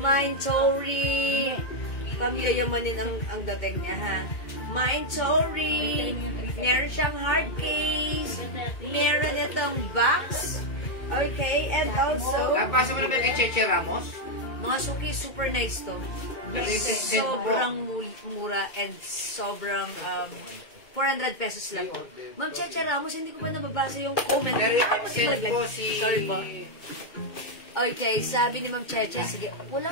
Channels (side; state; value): right; late; 2.1 ms